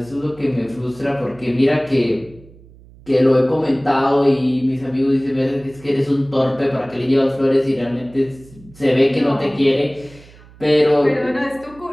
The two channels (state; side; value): noise; right; hum, 23 dB below the sound